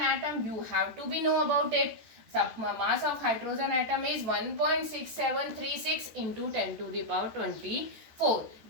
atom, you have to be know about it. Mass of hydrogen atom is 1.6736 into 10 to the power 24.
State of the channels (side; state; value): left; late; 13 ms